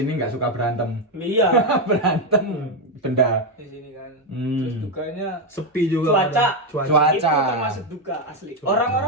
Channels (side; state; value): both; normal; correlation 0.06